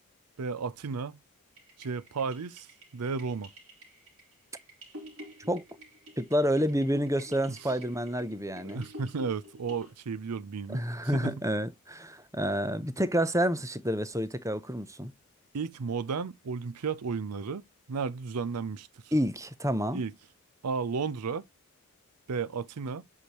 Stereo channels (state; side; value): normal; both; correlation 0.58